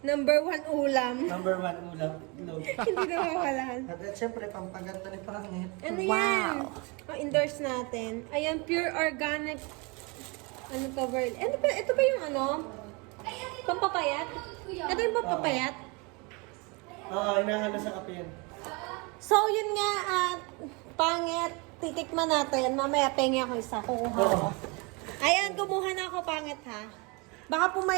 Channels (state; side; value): quieter; left; 29.2 dB